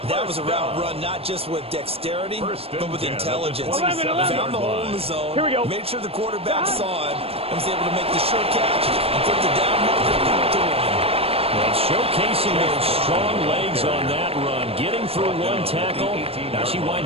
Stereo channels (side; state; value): left; late; 0.28 ms